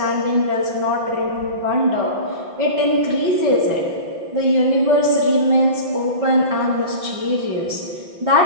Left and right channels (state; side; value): late; left; 5.9 ms